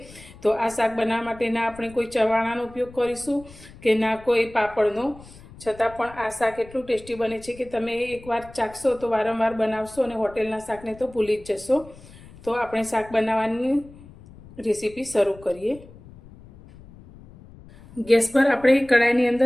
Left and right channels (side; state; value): left; noise; rumble, 20 dB below the sound